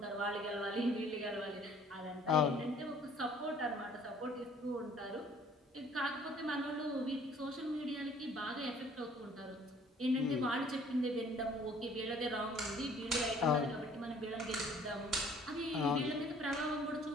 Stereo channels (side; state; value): both; normal; correlation 0.56